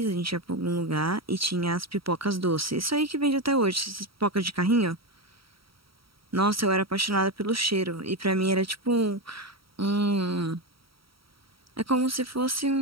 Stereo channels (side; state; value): left; late; 0.75 ms